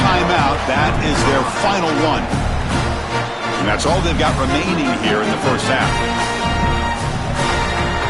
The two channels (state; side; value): identical; both; correlation 1.00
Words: That is their final one. And that's all they've got remaining here in the first half.